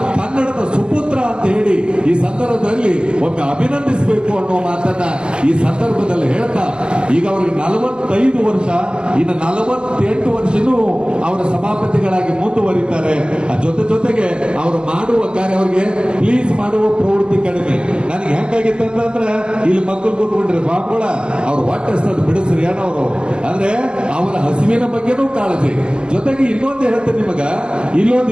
ಕನ್ನಡದ ಸುಪುತ್ರ ಅಂತ ಹೇಳಿ ಈ ಸಂದರ್ಭದಲ್ಲಿ ಒಮ್ಮೆ ಅಭಿನಂದಿಸಬೇಕು ಅನ್ನೋ ಮಾತನ್ನ ಈ ಸಂದರ್ಭದಲ್ಲಿ ಹೇಳ್ತಾ, ಈಗ ಅವರಿಗೆ 45 ವರ್ಷ, ಇನ್ನು 48 ವರ್ಷನೂ ಅವರ ಸಭಾಪತಿಗಳಾಗಿ ಮುಂದುವರಿತಾರೆ. ಜೊತೆಗೆ ಅವರು ಮಾಡುವ ಕಾರ್ಯ, ಅವರಿಗೆ ಪ್ಲೀಸ್ ಮಾಡುವ ಪ್ರವೃತ್ತಿ ಕಡಿಮೆ. ನನಗೆ ಹೆಂಗಾಗಿತ್ತು ಅಂತಂದ್ರೆ, ಇಲ್ಲಿ ಮಕ್ಕಳು ಕೂತ್ಕೊಂಡ್ರೆ ಬಾಬುಗಳ ಅವ್ರು ಹೊಟ್ಟೆ ಹಸ್ತದ ಬಿಡಿಸ್ರಿ ಏನವರು ಅಂದ್ರೆ ಅವರ ಹಸಿವಿನ ಬಗ್ಗೆನೂ ಕಾಳಜಿ. ಜೊತೆಗೆ ಇನ್ನೊಂದು ಹೇಳ್ತೇನೆ ನಿಮಗ, ಇಲ್ಲೊಂದು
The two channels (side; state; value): left; late; 0.054 ms